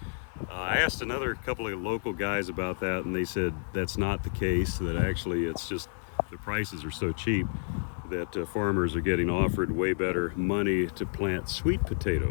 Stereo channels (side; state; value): right; silent; 58 dB below the other